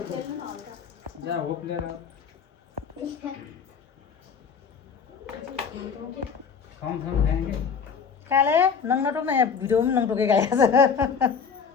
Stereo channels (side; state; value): right; quieter; 6.3 dB